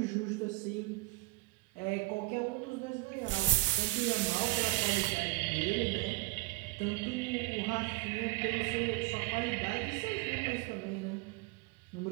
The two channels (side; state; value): left; quieter; 21.0 dB